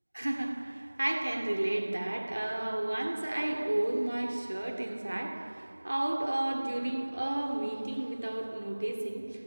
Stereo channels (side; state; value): both; inverted; correlation -1.00